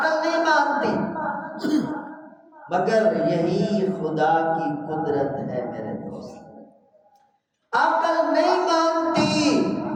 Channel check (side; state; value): both; identical; correlation 1.00